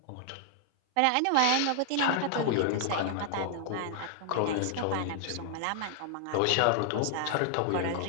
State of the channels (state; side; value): different; both; correlation 0.00